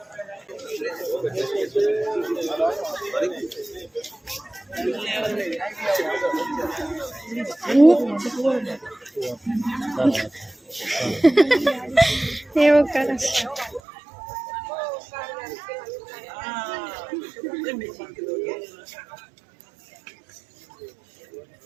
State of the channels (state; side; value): drops out; left; at 13.8 s